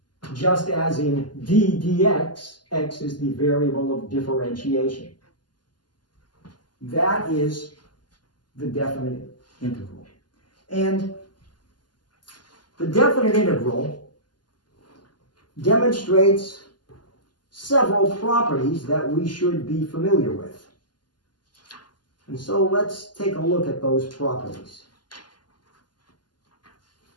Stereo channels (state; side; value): late; right; 0.71 ms